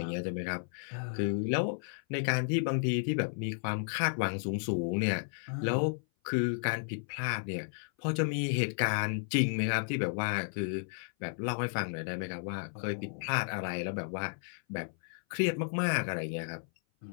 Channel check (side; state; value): right; silent; 56 dB below the other